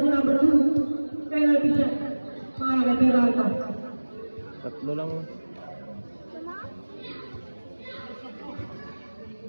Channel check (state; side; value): inverted; both; correlation -1.00